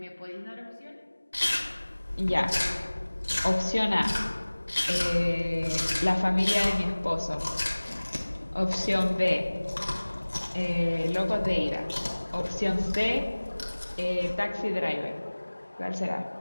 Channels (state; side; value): inverted; both; correlation -1.00